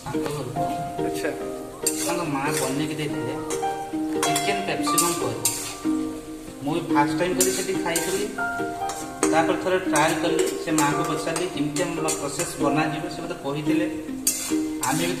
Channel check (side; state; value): both; identical; correlation 1.00